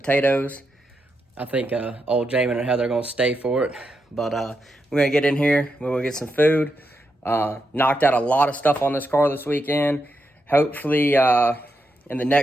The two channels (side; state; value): both; normal; correlation 0.85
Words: I think old Jamin and Heather are gonna stay for it, but we're gonna get in here, we're gonna get some food. Knocked out a lot of stuff on this car this weekend. Hopefully in the